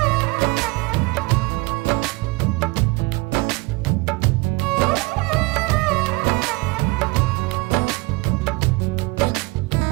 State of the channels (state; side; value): quieter; left; 24.2 dB